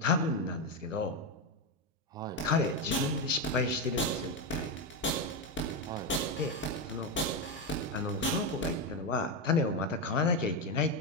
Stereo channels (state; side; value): normal; both; correlation 0.09